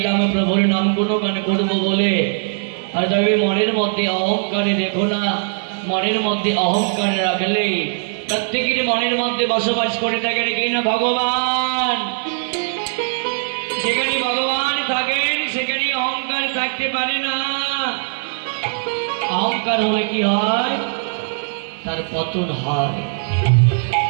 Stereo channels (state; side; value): silent; left; 66 dB below the other